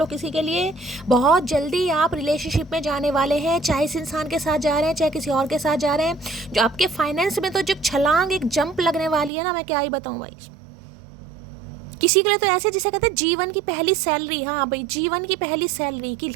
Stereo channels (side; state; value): left; drops out; at 9.3 s